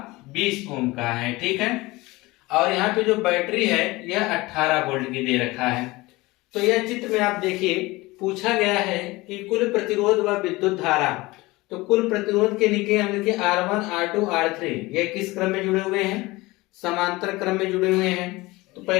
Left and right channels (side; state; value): right; quieter; 21.2 dB